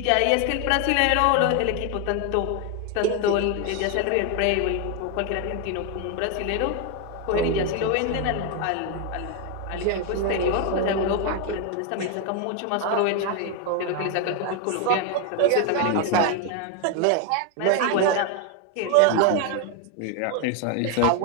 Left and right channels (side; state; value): both; different; correlation 0.01